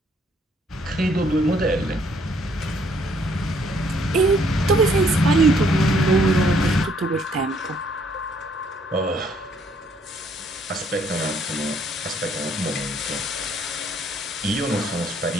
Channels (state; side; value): normal; both; correlation 0.66